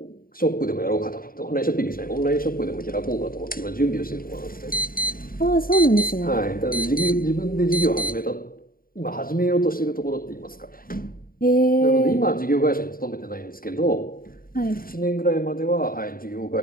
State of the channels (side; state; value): right; late; 0.42 ms